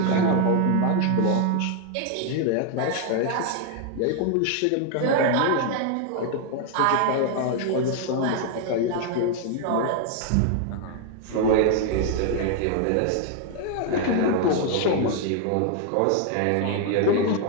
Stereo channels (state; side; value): different; both; correlation 0.01